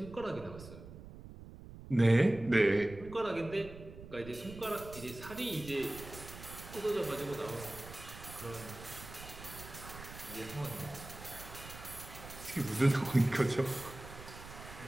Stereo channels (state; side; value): noise; right; rumble, 14 dB below the sound